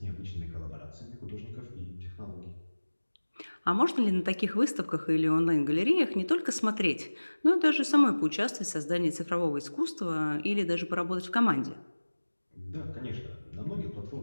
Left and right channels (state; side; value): inverted; both; correlation -1.00